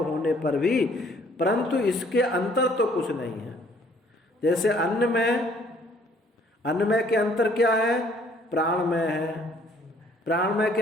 होने पर भी, परंतु इसके अंतर तो कुछ नहीं है। जैसे अन्नमय के अंतर क्या है? प्राणमय है। प्राणमय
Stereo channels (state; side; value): normal; both; correlation 0.60